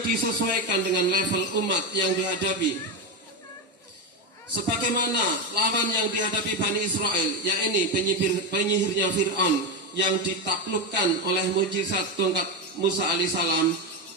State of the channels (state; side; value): normal; both; correlation 0.12